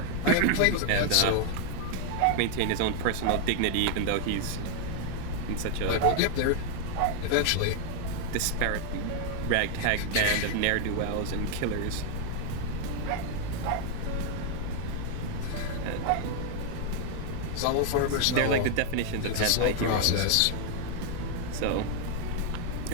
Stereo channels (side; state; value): both; different; correlation 0.00